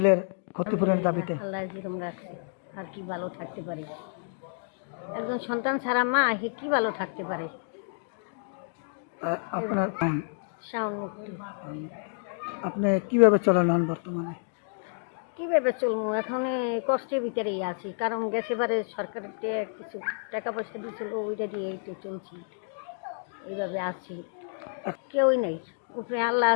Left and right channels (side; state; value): right; silent; digital silence